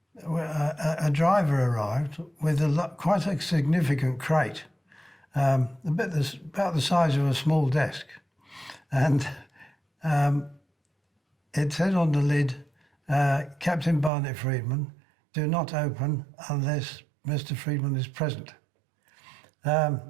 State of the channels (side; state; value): left; drops out; at 14.1 s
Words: a driver arrived with quite a significant crate, about the size of a small desk. And it said on the lid, Captain Barnett Freedman, do not open unless Mr. Freedman is present.